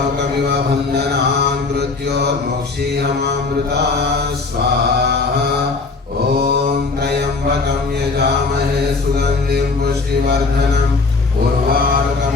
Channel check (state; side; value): quieter; right; 4.0 dB